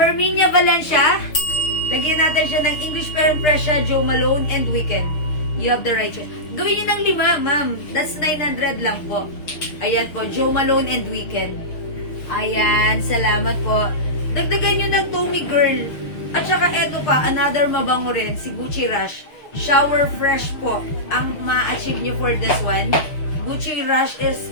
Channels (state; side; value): late; right; 6.6 ms